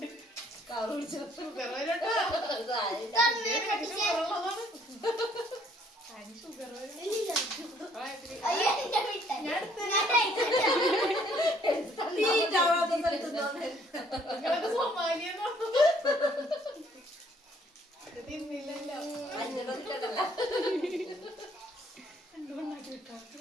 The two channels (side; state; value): both; normal; correlation 0.63